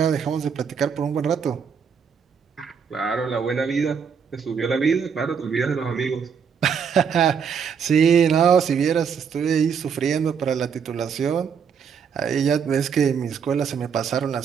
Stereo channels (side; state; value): left; quieter; 6.7 dB